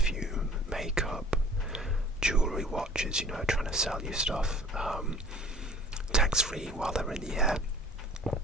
makeup, jewellery, watches, trying to sell you stuff tax-free while they're in the air.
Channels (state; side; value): normal; both; correlation 0.48